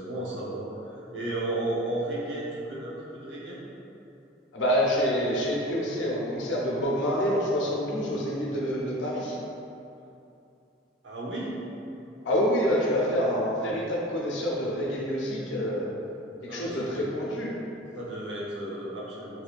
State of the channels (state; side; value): normal; both; correlation 0.35